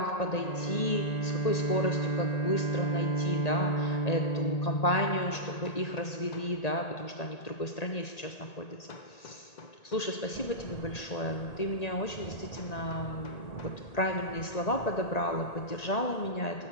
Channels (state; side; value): late; right; 1.8 ms